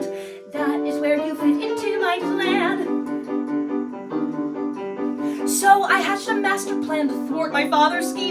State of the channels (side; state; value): both; identical; correlation 1.00